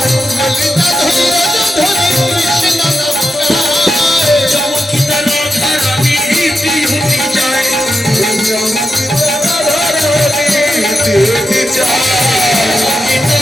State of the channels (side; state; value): both; normal; correlation 0.87